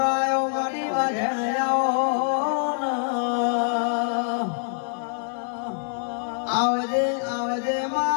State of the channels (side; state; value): right; silent; 62 dB below the other